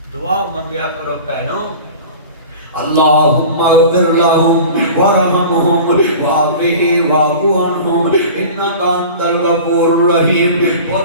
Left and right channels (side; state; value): both; inverted; correlation -0.38